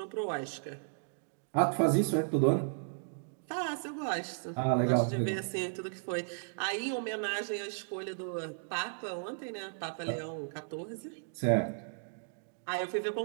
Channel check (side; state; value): left; silent; digital silence